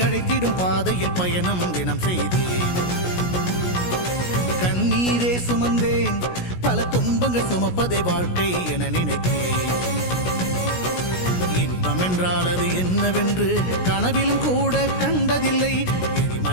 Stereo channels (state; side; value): late; right; 16 ms